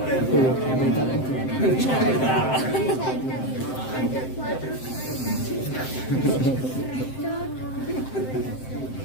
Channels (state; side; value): late; right; 7.7 ms